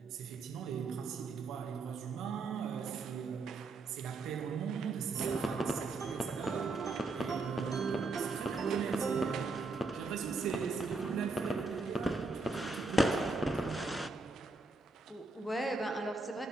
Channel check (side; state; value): left; quieter; 3.5 dB